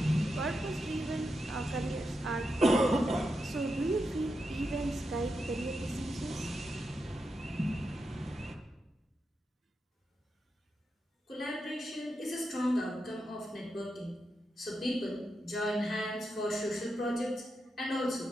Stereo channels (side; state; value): both; normal; correlation 0.86